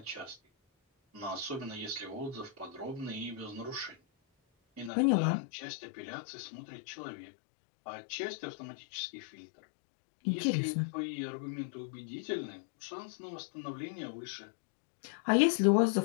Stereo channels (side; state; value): right; drops out; at 4.9 s